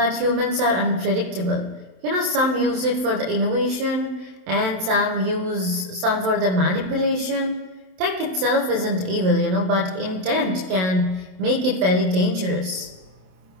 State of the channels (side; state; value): left; late; 27 ms